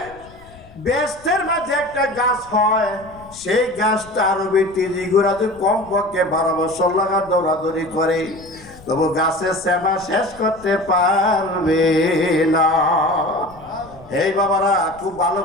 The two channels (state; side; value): noise; left; rumble, 22 dB below the sound